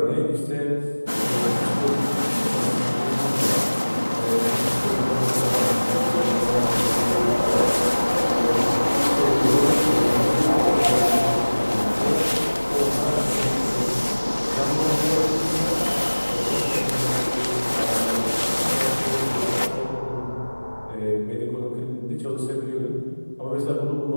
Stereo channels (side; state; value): both; inverted; correlation -1.00